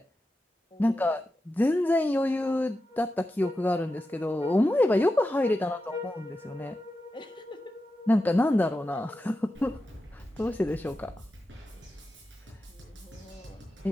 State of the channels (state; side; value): normal; both; correlation 0.90